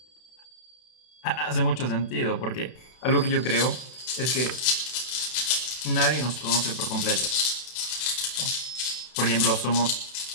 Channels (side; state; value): right; late; 32 ms